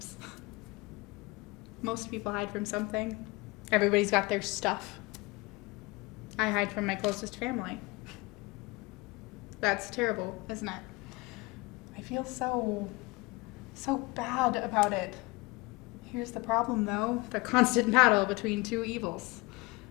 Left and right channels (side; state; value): right; quieter; 23.8 dB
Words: Most people hide from something. Everybody's got their stuff. I hide from my closest family. That's terrible, isn't it? I feel so bad about it. Here's the problem, though. The constant battle between two evils.